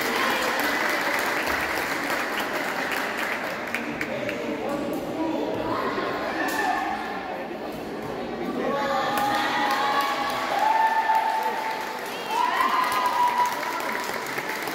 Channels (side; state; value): both; identical; correlation 1.00